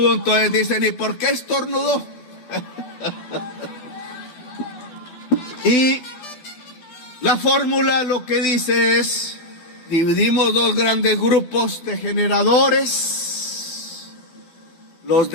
entonces dicen, ¿y por qué estornudó? Y la fórmula lo que dice es: dividimos 2 grandes grupos de generadores, los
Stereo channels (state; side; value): late; right; 12 ms